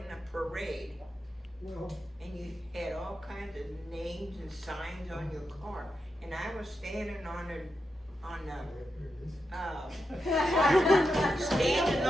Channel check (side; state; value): both; normal; correlation 0.87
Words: a parade, Well, and you had all kinds of names and signs on your car, and I was standing on there it is. standing